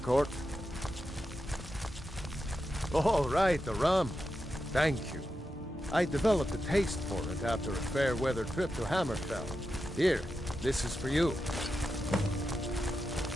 Oh, right, the rum. Thank you. I developed a taste for it after a fair weather trip to Hammerfell. Here, this is for you.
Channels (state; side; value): normal; both; correlation 0.89